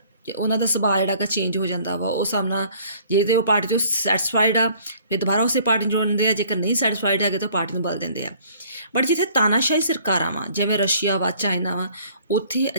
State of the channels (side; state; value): both; inverted; correlation -0.56